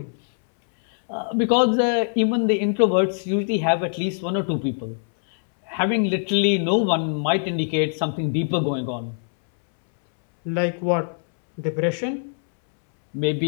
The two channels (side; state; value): right; silent; 64 dB below the other